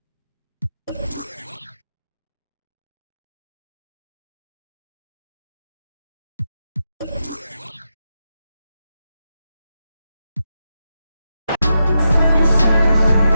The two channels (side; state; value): both; inverted; correlation -0.87